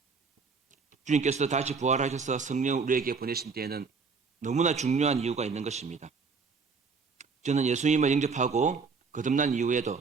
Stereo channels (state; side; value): quieter; left; 5.0 dB